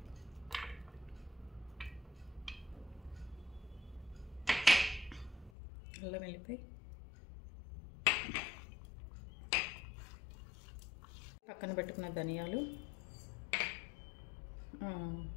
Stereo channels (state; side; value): drops out; right; at 5.5 s